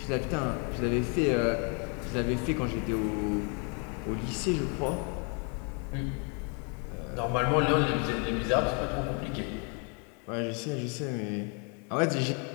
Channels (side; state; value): right; quieter; 36.8 dB